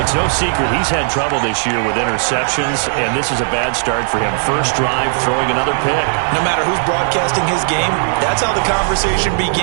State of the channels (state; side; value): silent; left; digital silence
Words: it's no secret he's had trouble this year with interceptions, and this is a bad start for him. First drive, throwing another pick. No matter who's broadcasting his game, that's how the conversation